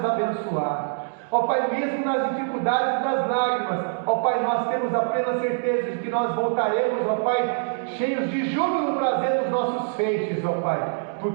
abençoar. Ó Pai, mesmo nas dificuldades e nas lágrimas, ó Pai, nós temos a plena certeza de que nós voltaremos, ó Pai, cheios de júbilo, trazendo os nossos feixes, ó Pai,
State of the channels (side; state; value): left; silent; digital silence